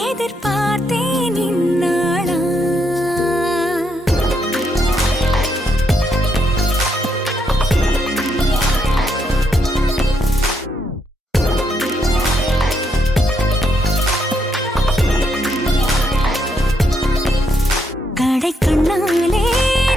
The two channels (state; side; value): normal; both; correlation 0.77